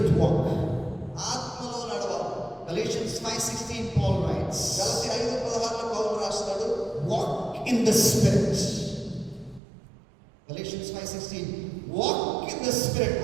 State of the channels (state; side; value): drops out; left; at 9.6 s